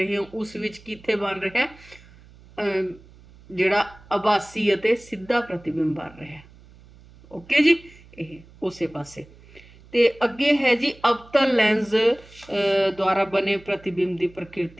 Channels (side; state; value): right; noise; hum, 24 dB below the sound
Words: ਹੋ ਉਸ ਵਿੱਚ ਕਿੱਥੇ ਬਣ ਰਿਹਾ, ਜਿਹੜਾ ਆਭਾਸੀ ਅਤੇ ਸਿੱਧਾ ਪ੍ਰਤੀਬਿੰਬ ਬਣ ਰਿਹਾ। ਓਕੇ ਜੀ। ਇਹ ਉਸੇ ਪਾਸੇ। ਤੇ ਅੱਗੇ ਹੈ ਜੀ ਅਵਤਲ ਲੈਂਸ ਦੁਆਰਾ ਬਣੇ ਪ੍ਰਤੀਬਿੰਬ ਦੀ